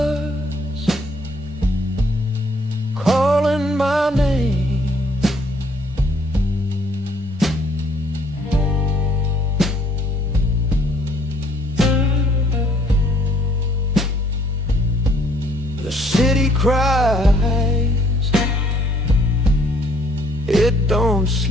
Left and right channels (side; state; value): both; normal; correlation 0.64